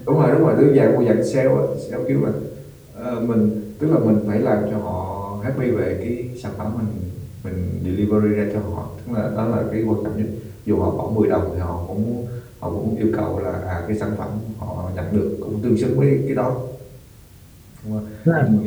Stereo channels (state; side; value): identical; both; correlation 1.00